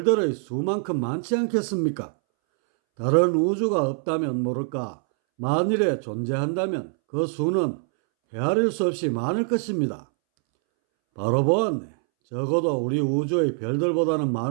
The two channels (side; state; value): left; silent; 62 dB below the other